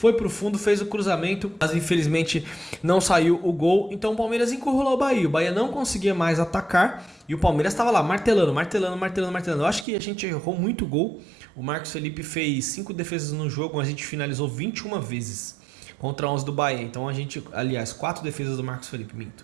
pro fundo, fez o cruzamento, mas infelizmente não saiu o gol. Então o Palmeiras encurralou o Bahia. O Bahia não conseguia mais atacar e o Palmeiras estava lá martelando. Eu acho que a gente errou muito gol. O Marcos Felipe fez 5 defesas no jogo, a gente finalizou 21 vezes contra 11 do Bahia. Então a gente, aliás, 4 defesas do Marcos Felipe,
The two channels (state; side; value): drops out; left; at 9.9 s